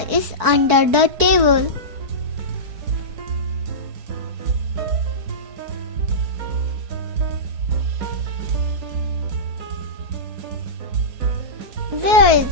is under the table. Where is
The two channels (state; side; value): late; left; 4.6 ms